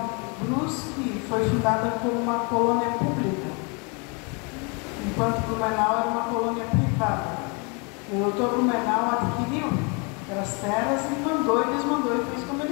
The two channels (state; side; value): quieter; right; 33.0 dB